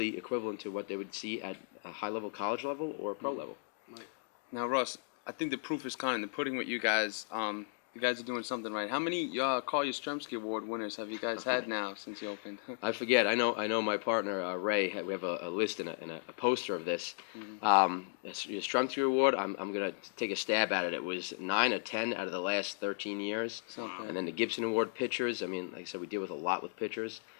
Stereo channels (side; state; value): right; silent; digital silence